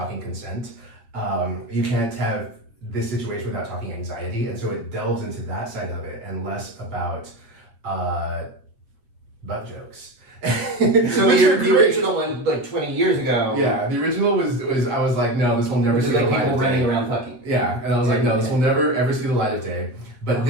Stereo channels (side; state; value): left; late; 7.6 ms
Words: consent. You can't have this situation without talking anxiety. And so it delves into that side of it and less about butt jokes. So the original one, like 20 years ago. Yeah, the original was I was like, no, this will never see the light of day. Running around fucking. Yeah, and I was like, no, this will never ever see the light of day. But